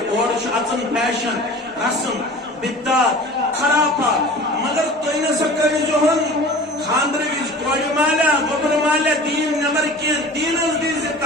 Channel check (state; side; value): normal; both; correlation 0.40